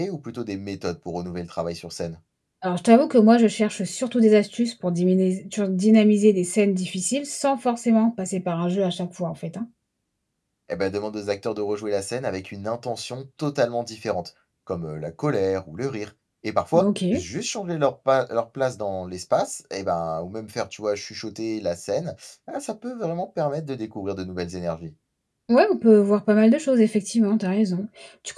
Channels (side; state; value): both; identical; correlation 1.00